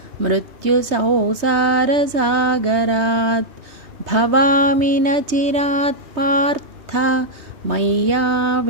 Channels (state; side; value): late; left; 3.2 ms